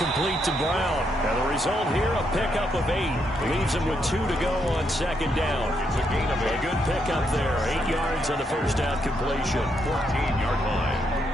to Brown. And the result here, a pickup of 8. Leaves him with 2 to go on 2nd down. It's a gain of 8. A good pickup there. 8 yards on the first down completion. 14-yard line.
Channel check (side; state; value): both; normal; correlation 0.78